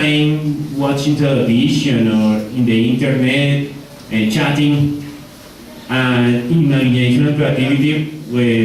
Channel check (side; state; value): both; identical; correlation 1.00